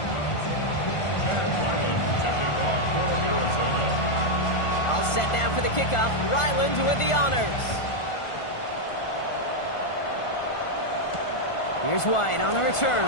All set now for the kickoff. Ryland with the honors. Here's White on the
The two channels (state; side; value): late; right; 1.5 ms